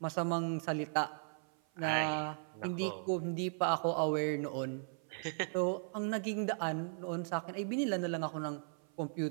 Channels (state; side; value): silent; left; 53 dB below the other